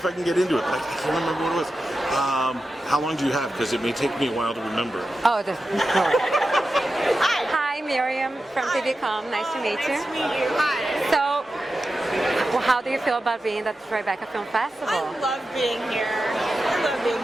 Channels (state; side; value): normal; both; correlation 0.91